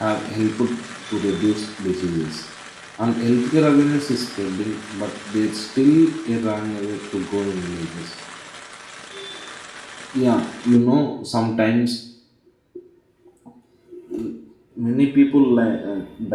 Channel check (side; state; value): both; identical; correlation 1.00